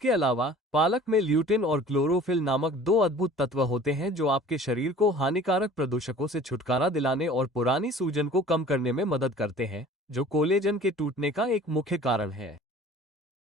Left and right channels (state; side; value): normal; both; correlation 0.46